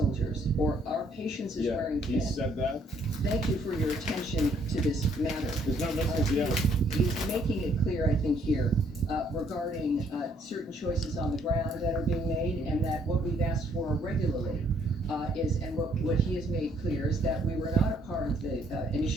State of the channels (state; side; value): normal; both; correlation 0.66